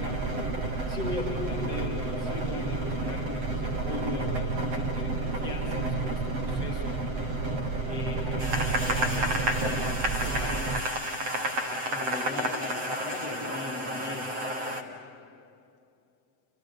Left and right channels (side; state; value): left; late; 7.9 ms